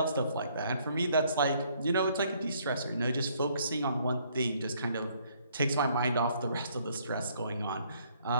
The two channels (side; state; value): both; inverted; correlation -0.65